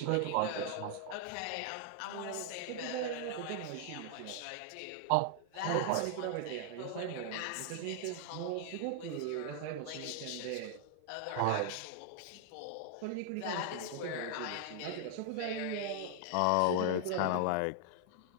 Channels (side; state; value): both; different; correlation 0.00